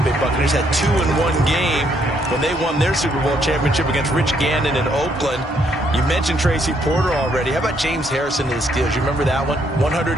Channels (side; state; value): both; normal; correlation 0.71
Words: Bay Buccaneers had 2-in-1 game when they won their Super Bowl championship against Rich Gannon in Oakland. You mentioned Tracy Porter already. How about James Harrison and the Steelers? You remember that one? 100